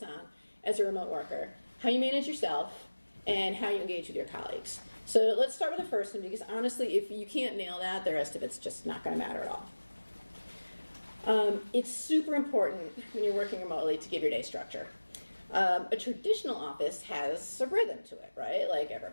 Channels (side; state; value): both; inverted; correlation -1.00